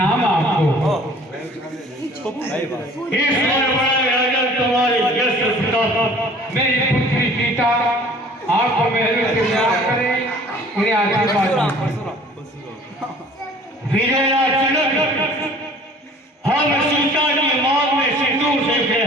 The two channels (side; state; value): both; normal; correlation 0.51